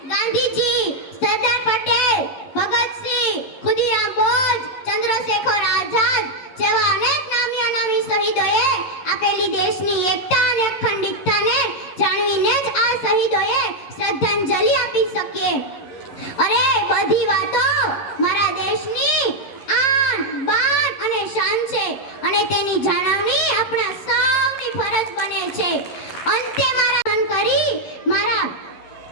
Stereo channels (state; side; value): late; right; 11 ms